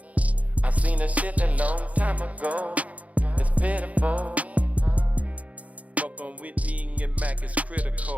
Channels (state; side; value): late; left; 0.069 ms